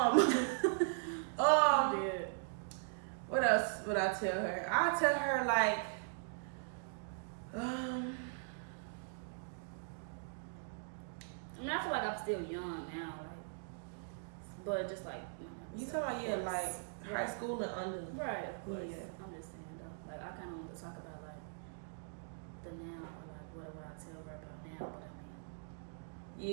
What else would I tell her? I tell her like, I feel like I'm still young now, like, but just like you talking about like high school and under, right? Of course. Yeah. I'm just saying though, like, I kind of want to talk about like the now, or like what would I tell her about now, but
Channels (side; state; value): left; silent; digital silence